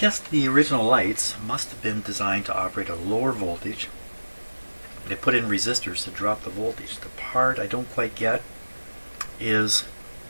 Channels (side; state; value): both; inverted; correlation -1.00